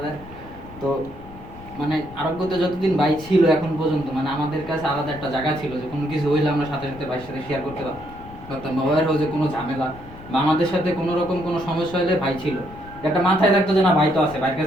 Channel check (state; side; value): noise; left; rumble, 17 dB below the sound